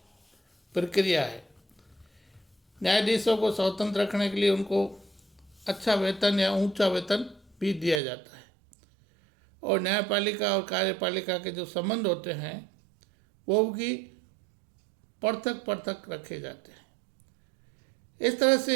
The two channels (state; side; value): drops out; left; at 8.0 s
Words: प्रक्रिया है। न्यायाधीशों को स्वतंत्र रखने के लिए उनको अच्छा वेतन या ऊंचा वेतन भी दिया जाता है, और न्यायपालिका और कार्यपालिका के जो संबंध होते हैं वो भी पृथक पृथक रखे जाते हैं। इस तरह से